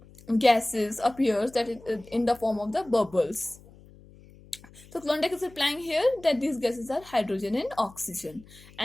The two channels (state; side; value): noise; left; hum, 23 dB below the sound